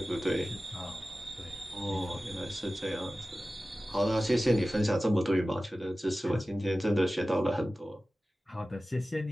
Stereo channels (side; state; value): both; normal; correlation 0.96